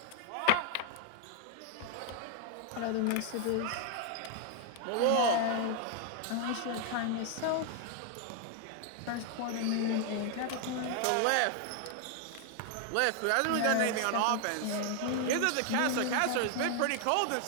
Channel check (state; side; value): different; both; correlation 0.00